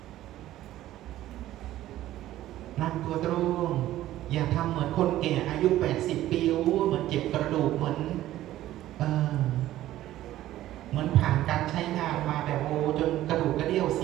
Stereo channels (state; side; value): quieter; left; 14.2 dB